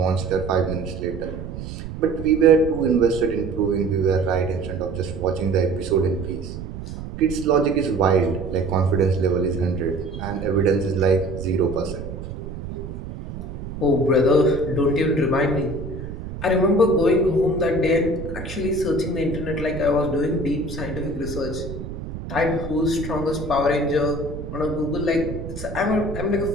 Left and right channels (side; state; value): right; noise; rumble, 9 dB below the sound